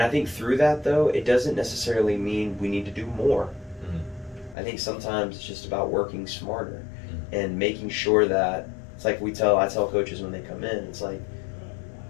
think through that, though, it doesn't necessarily mean we need to do more. I think sometimes it's just about working smarter and making sure that it's like I tell coaches when they come in, it's like,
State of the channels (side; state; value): right; drops out; at 4.5 s